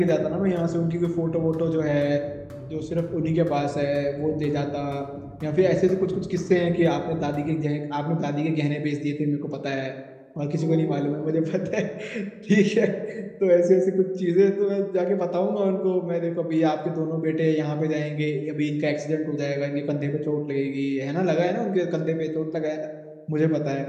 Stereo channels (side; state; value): both; identical; correlation 1.00